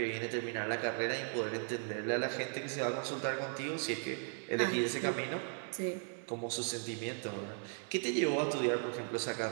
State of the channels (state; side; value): silent; left; 53 dB below the other